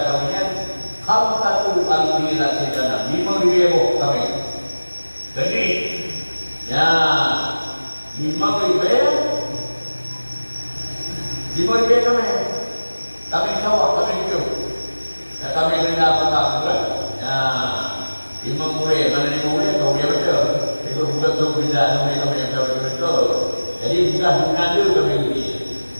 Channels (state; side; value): inverted; both; correlation -1.00